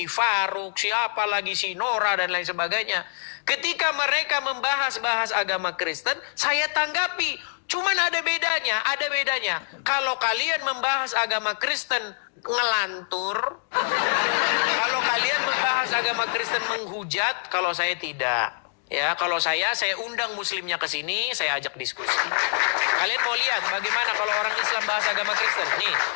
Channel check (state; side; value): silent; right; digital silence